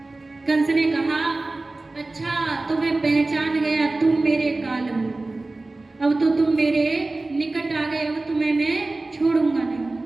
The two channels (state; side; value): quieter; left; 3.1 dB